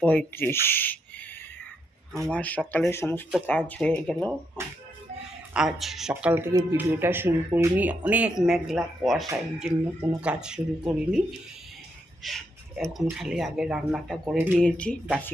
আমার সকালে সমস্ত কাজ হয়ে গেল। আজ সকাল থেকে ভিডিওটা শুরু করিনি, অনেক মেঘলা কুয়াশা, এই জন্য কোনো কাজ শুরু করিনি। এখন খালি আগে রান্নাটা করে নিয়েছি,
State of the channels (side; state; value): both; normal; correlation 0.79